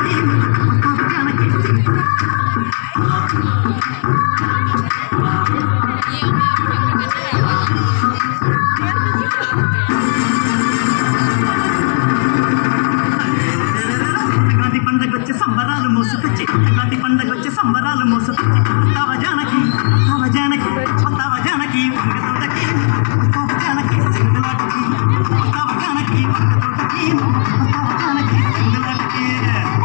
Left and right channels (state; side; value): silent; right; digital silence